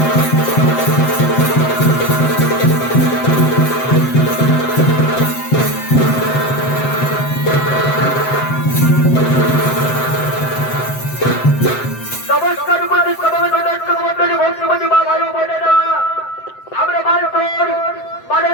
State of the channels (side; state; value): right; late; 7.7 ms